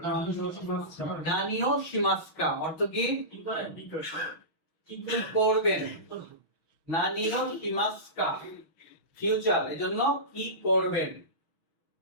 নানিও শিমাস্কা অর্থ কি? কি করবেন। নানিও শিমাস্কা ফিউচার, এজন্য কি করবেন।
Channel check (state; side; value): late; right; 6.3 ms